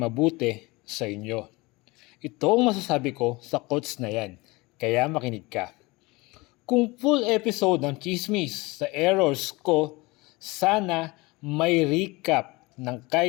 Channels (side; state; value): right; quieter; 23.4 dB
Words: mabuti sa inyo. Ito ang masasabi ko sa quotes na yan, kaya makinig ka. Kung full episode ng chismis sa errors ko, sana may recap ng